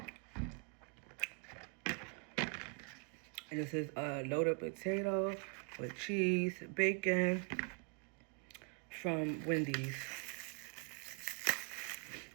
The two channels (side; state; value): left; quieter; 37.9 dB